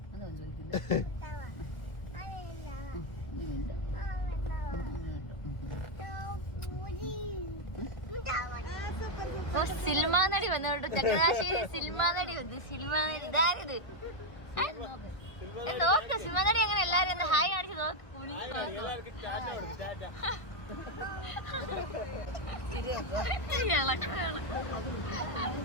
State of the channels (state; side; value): late; right; 1.3 ms